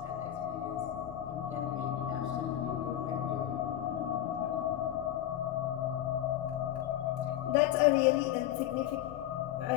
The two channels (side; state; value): right; quieter; 12.3 dB